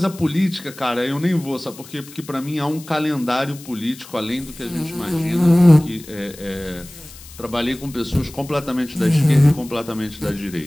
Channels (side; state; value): left; noise; hiss, 19 dB below the sound